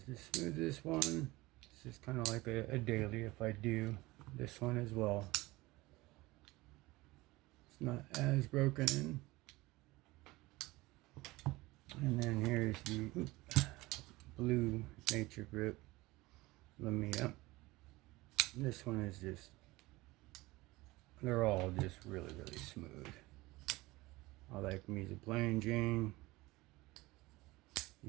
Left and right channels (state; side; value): quieter; left; 20.5 dB